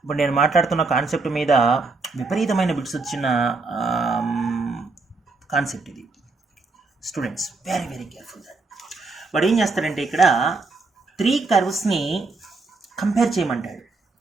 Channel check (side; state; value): left; quieter; 3.8 dB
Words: ఇప్పుడు నేను మాట్లాడుతున్న కాన్సెప్ట్ మీద విపరీతమైన బిట్స్ వచ్చిన కాన్సెప్ట్ ఇది స్టూడెంట్స్. Very careful that. వాడు ఏం చేస్తాడంటే ఇక్కడ 3 కర్వ్స్ని కంపేర్ చేయమంటాడు.